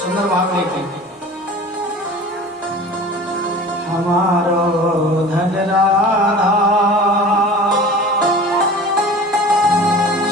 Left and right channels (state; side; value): normal; both; correlation 0.40